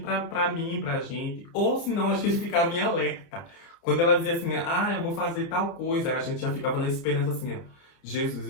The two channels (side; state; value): right; late; 30 ms